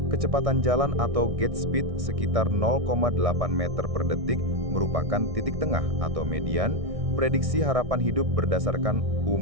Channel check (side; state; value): left; late; 1.6 ms